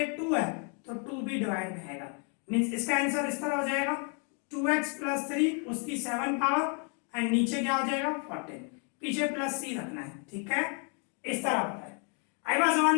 2 है तो 2 भी डिवाइड में आएगा, मींस इसका आंसर इस तरह हो जाएगा 2x प्लस 3 उसकी 7 पावर एंड नीचे क्या हो जाएगा 14, पीछे प्लस c रखना है, ठीक है, इस तरह होता है। आई बात समझ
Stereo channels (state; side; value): quieter; right; 38.9 dB